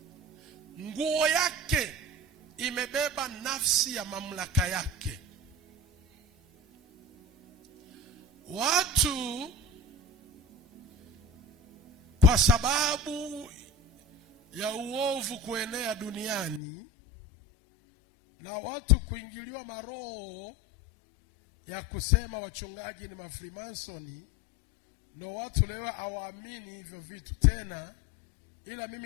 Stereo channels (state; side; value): drops out; right; at 16.6 s